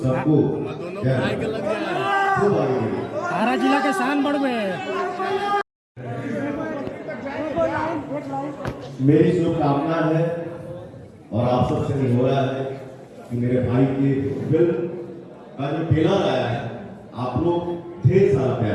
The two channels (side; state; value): both; identical; correlation 1.00